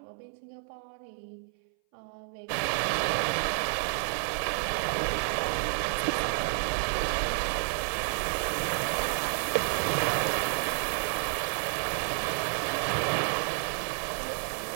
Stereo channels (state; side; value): silent; left; 58 dB below the other